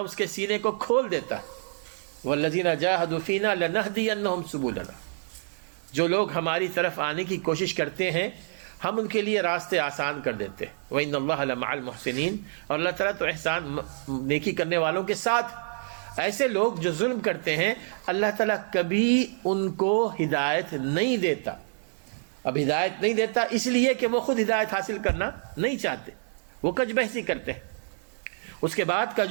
اس کے سینے کو کھول دیتا ہے. وَالَّذِينَ جَاهَدُوا فِينَا لَنَهْدِيَنَّهُمْ سُبُلَنَا. جو لوگ ہماری طرف آنے کی کوشش کرتے ہیں ہم ان کے لیے راستے آسان کر دیتے ہیں۔ وَإِنَّ اللَّهَ لَمَعَ الْمُحْسِنِينَ، اور اللہ تعالیٰ تو احسان نیکی کرنے والوں کے ساتھ۔ ایسے لوگ جو ظلم کرتے ہیں اللہ تعالیٰ کبھی ان کو ہدایت نہیں دیتا۔ اب ہدایت نہیں دیتا اس لیے کہ وہ خود ہدایت حاصل کرنا نہیں چاہتے، وہ کج بحثی کرتے ہیں۔ اس کے بعد کا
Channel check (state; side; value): silent; left; digital silence